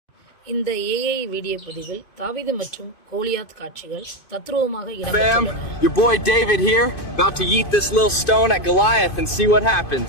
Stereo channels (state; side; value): late; right; 2.5 ms